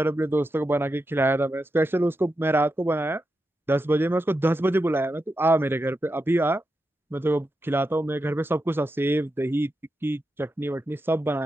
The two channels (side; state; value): both; normal; correlation 0.88